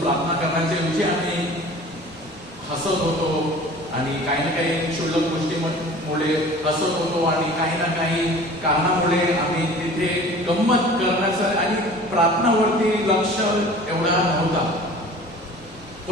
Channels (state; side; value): normal; both; correlation 0.44